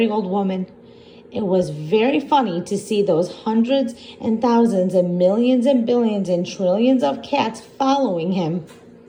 old woman. It was very funny to see those hundreds and thousands and millions and billions and trillions of cats following him.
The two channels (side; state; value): both; identical; correlation 1.00